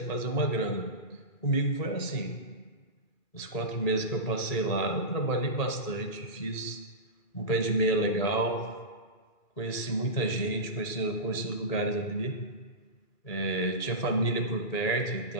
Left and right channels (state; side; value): late; right; 2.4 ms